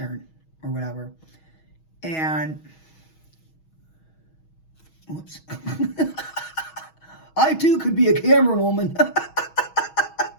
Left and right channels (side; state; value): right; late; 6.3 ms